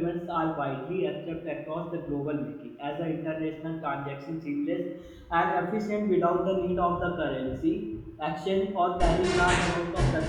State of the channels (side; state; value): both; identical; correlation 1.00